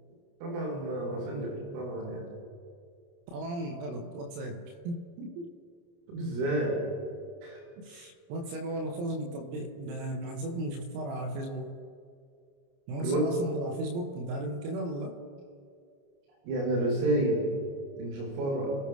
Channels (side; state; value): left; late; 29 ms